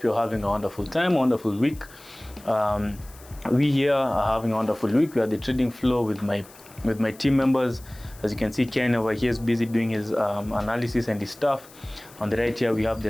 you're having a wonderful time, wonderful week. We here are having a wonderful week. We are the trading floor with my team members. As you can see, Ken over here is busy doing his analysis and his stuff. On the right here, we have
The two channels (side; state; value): left; noise; hiss, 23 dB below the sound